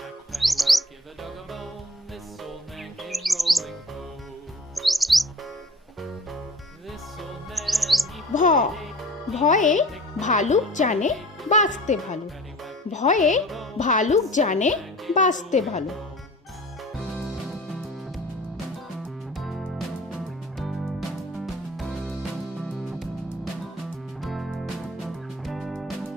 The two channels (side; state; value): both; normal; correlation 0.43